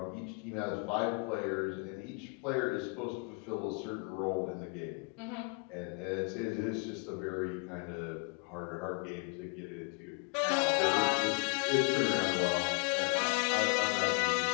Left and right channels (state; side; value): quieter; right; 33.9 dB